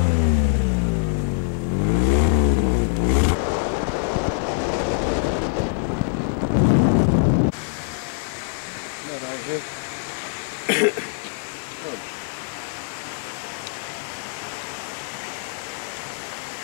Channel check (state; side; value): silent; right; 63 dB below the other